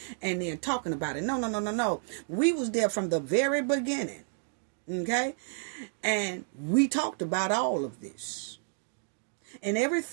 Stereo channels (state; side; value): silent; left; digital silence